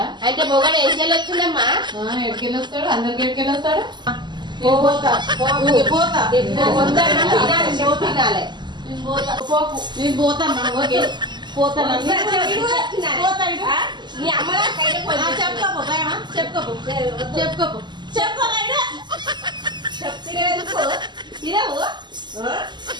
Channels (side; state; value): left; late; 0.21 ms